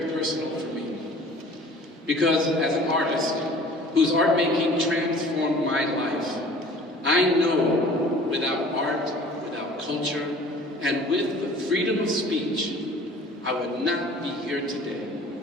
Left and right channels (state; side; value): normal; both; correlation 0.47